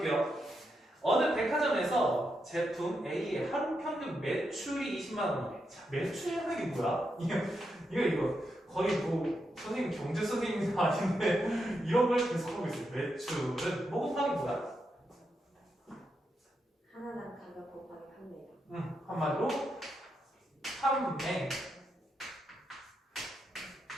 어느 백화점에서 제품 A의 하루 평균 매출이 20만 원이래. 자, 매출이라는 게 뭐야? 이거 거의 뭐 선생님 경제 선생님이 아닌데 이런 걸 계속하고 있어요. 매출은 뭐 곱하기 뭐야? 하나당 가격 곱하기 판매량. 한마디로 판매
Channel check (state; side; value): normal; both; correlation 0.84